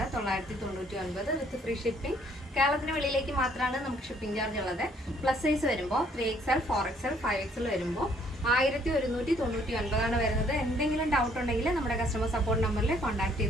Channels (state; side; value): normal; both; correlation 0.64